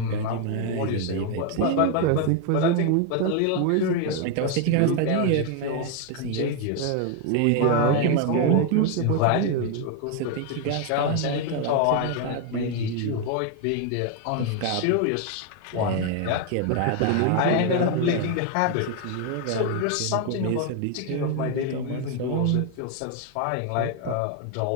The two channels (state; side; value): different; both; correlation 0.01